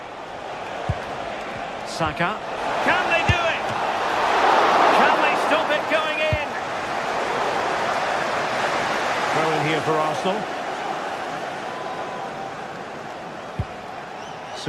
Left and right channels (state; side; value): identical; both; correlation 1.00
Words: Saka. Can they do it? Can they stop it going in? Throw in here for Arsenal.